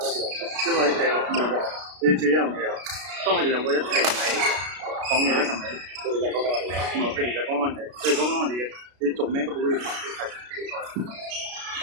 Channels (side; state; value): left; late; 33 ms